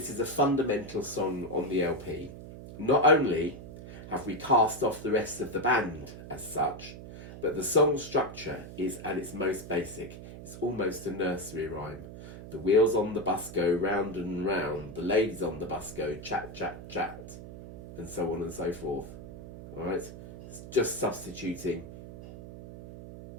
is a fundamental song on the LP. Not only have we cast off the rest of the band as such, but the song structure is at its most basic. It's almost a nursery rhyme. The wheels on the bus go round and round, the ladies on the bus go chat, chat, chat, and so on and so forth. All right? It's just substituting,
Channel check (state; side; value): noise; right; hum, 13 dB below the sound